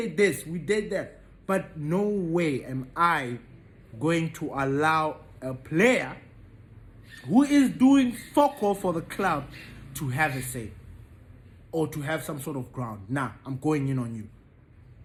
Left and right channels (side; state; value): both; identical; correlation 1.00